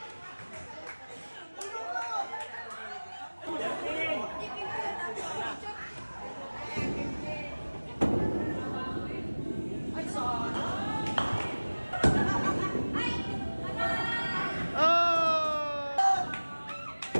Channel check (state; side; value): inverted; both; correlation -1.00